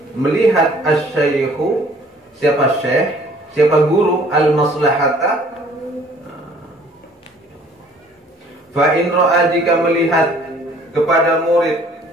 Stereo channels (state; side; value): normal; both; correlation 0.56